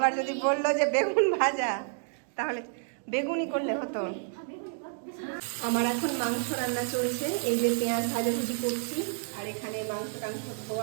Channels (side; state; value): left; silent; digital silence